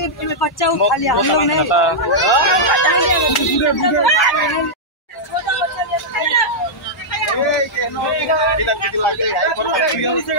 बच्चा उठा लिया हम लोग ने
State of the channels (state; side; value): normal; both; correlation -0.08